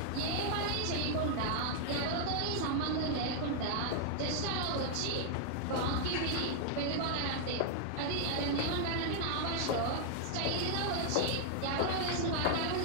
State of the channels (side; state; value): both; different; correlation 0.00